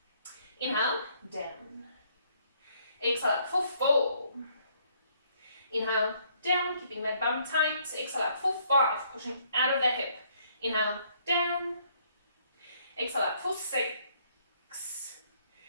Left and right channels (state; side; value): inverted; both; correlation -0.67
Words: Inhale, down. Exhale up for 4. Inhale, down, keeping that bum tight. Exhale up for 5, pushing out of that hip. Inhale, down. Exhale up for 6.